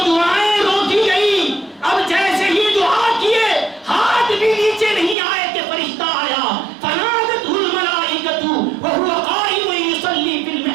دعائیں روکی گئی، اب جیسے ہی دعا کیے ہاتھ بھی نیچے نہیں آئے کہ فرشتہ آیا، فنادتہ الملائکۃ وہو قائم یصلی فی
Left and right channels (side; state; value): left; drops out; at 5.2 s